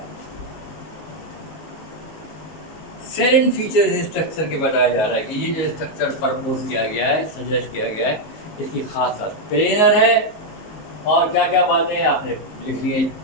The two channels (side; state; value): right; late; 19 ms